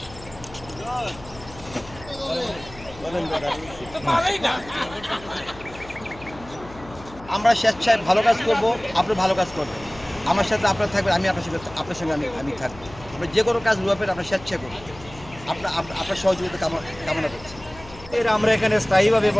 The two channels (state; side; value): noise; left; hum, 18 dB below the sound